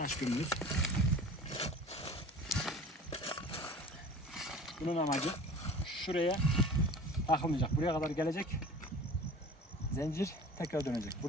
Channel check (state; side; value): normal; both; correlation 0.42